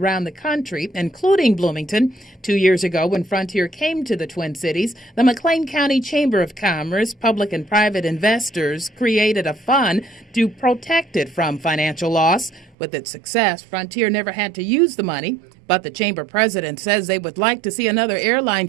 the country, including Bloomington. 2 years ago, when Frontier came to the Twin Cities, the McLean County Chamber of Commerce, public and private investors created a fund to protect it from financial loss. With its success, Frontier never had to use the money, but the chamber president says they would like to see another airline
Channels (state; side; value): drops out; left; at 12.8 s